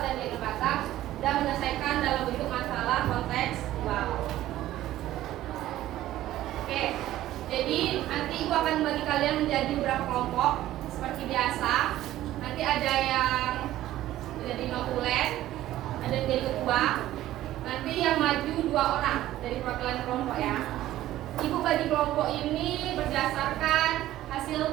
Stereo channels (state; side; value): quieter; left; 14.3 dB